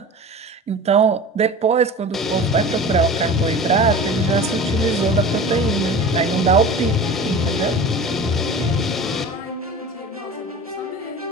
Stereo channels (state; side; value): normal; both; correlation 0.36